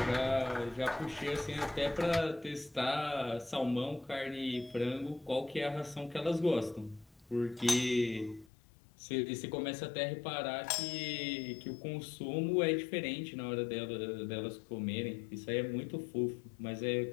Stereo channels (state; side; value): drops out; right; at 8.5 s